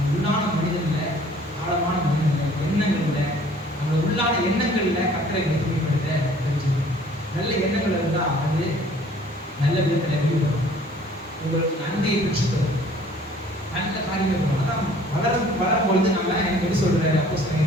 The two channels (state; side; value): normal; both; correlation 0.54